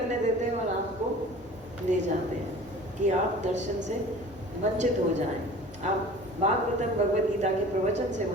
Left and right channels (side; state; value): both; normal; correlation 0.43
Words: देते हैं और आपको ले जाते हैं कि आप दर्शन से वंचित हो जाएं, आप भागवतम भगवत गीता के प्रवचन से